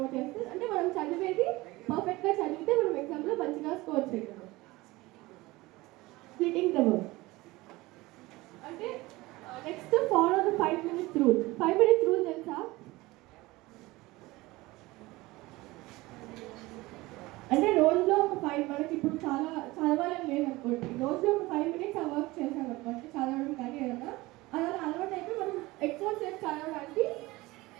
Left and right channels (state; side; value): quieter; left; 20.5 dB